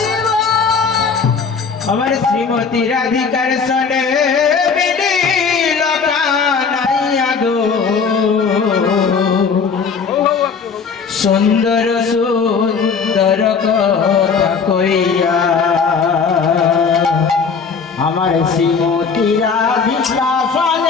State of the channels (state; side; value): quieter; right; 5.6 dB